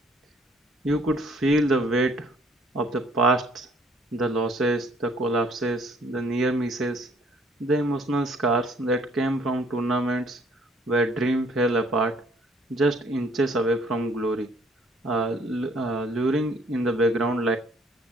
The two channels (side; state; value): both; normal; correlation 0.60